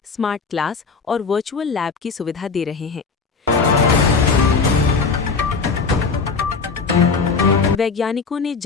स्मार्ट क्लास और वर्चुअल लैब की सुविधा दे रहे हैं। वैज्ञानिकों ने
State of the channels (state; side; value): quieter; right; 4.9 dB